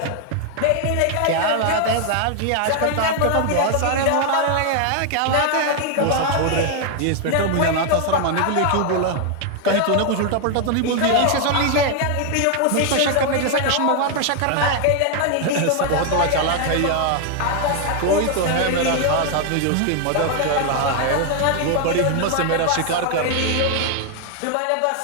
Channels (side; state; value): both; different; correlation 0.00